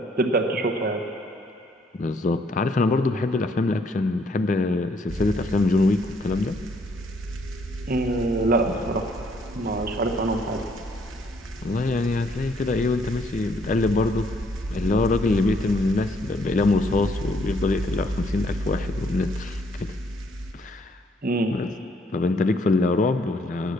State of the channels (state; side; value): normal; both; correlation 0.68